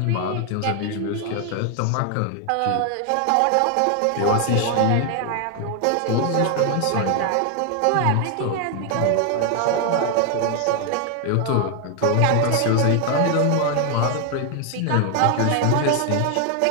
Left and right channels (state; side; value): different; both; correlation 0.00